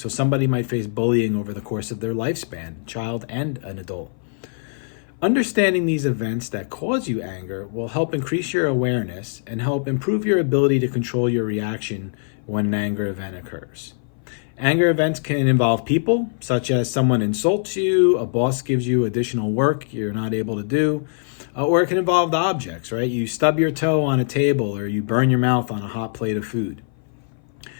somebody might face bullying over the course of their lifespan, child and an adult. Understanding these events that cause you anger will help increase your awareness and help improve your ability to control your reaction when an anger event occurs. Anger events can involve people, such as someone insults you, a boss gives you additional work you're not able to do, or it can involve the objects, right? You stub your toe on a table or you burn your mouth on a hot plate of food.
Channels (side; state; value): right; silent; 58 dB below the other